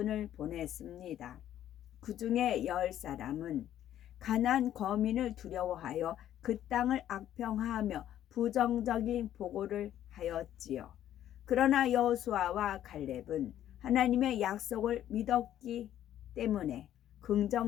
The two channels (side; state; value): right; quieter; 11.6 dB